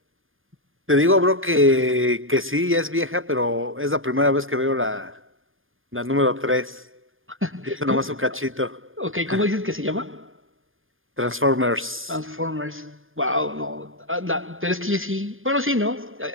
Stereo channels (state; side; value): late; left; 0.59 ms